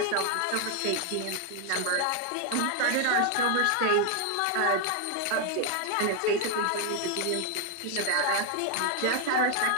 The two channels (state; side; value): different; both; correlation 0.00